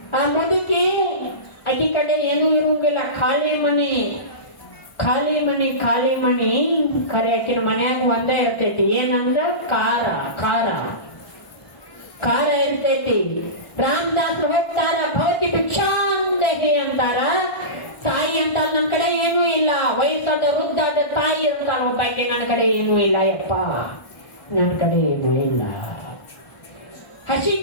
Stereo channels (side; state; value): right; late; 1.4 ms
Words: ಆ ಮುದುಕಿ ಅಕ್ಕಿ ಕಡೆ ಏನೂ ಇರುವಂಗಿಲ್ಲ, ಖಾಲಿ ಮನಿ. ಖರೆ ಆಕಿನ ಮನ್ಯಾಗ ಒಂದೇ ಇರ್ತೈತಿ. ಏನಂದ್ರ ಖಾರ ಇರ್ತೈತಿ. ರಾಮದಾಸರು ಹೋಗ್ತಾರ, ಭವತಿ ಭಿಕ್ಷಾಂದೇಹಿ ಅಂತಾರ. ತಾಯಿ ಅಂತ ನನ್ನ ಕಡೆ ಏನೂ ಇಲ್ಲ. ವಯಸ್ಸಾದ ವೃದ್ಧಾದ ತಾಯಿ ಅಂತಾರ ಒಬ್ಬಾಕಿ, ನನ್ನ ಕಡೆ ಏನೂ ಇಲ್ಲ ಯಪ್ಪ, ನನ್ನ ಕಡೆ ಏನೂ ಇಲ್ಲ. ಹಸಿ